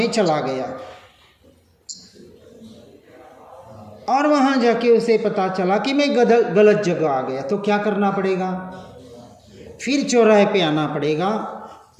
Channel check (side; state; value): both; identical; correlation 1.00